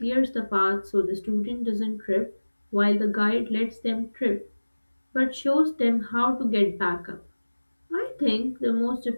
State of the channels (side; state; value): both; inverted; correlation -1.00